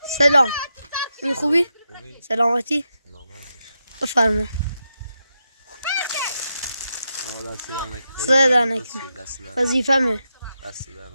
سلام. این خوبی؟ سلامتی؟ بفرما. صدا نکنه. وظیفه‌مه.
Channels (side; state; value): both; inverted; correlation -0.86